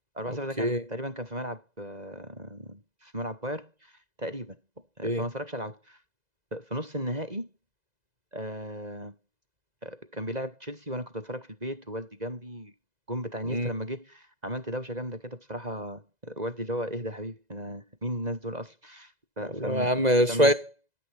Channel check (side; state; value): left; late; 2.0 ms